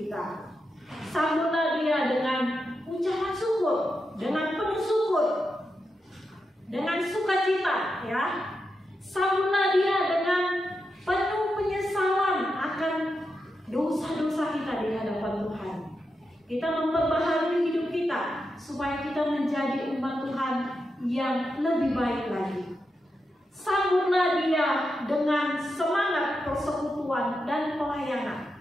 Sambutlah Dia dengan ucapan syukur, dengan penuh syukur, dengan sukacita, ya. Sambutlah Dia dengan penuh penyesalan akan dosa-dosa kita di hadapan Tuhan. Kita memperbaharui hidup kita supaya kita menjadi umat Tuhan yang lebih baik lagi. Sambutlah Dia dengan semangat persekutuan dan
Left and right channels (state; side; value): normal; both; correlation 0.87